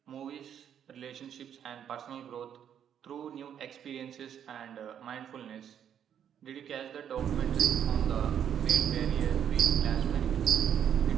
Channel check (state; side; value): quieter; left; 9.1 dB